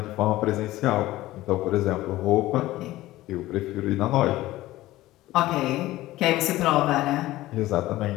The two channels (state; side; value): quieter; right; 16.7 dB